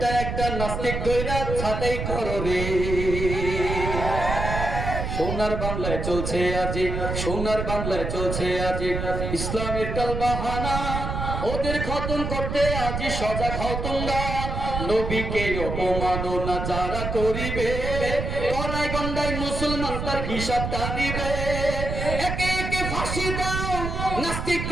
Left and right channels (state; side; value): noise; right; rumble, 3 dB below the sound